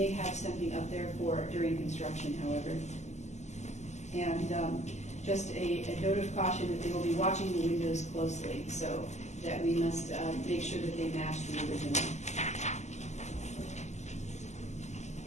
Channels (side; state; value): right; late; 0.33 ms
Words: have something up there for during construction, however. And just a note of caution that they will be watching the windows closely, so that we must make sure that they match the original.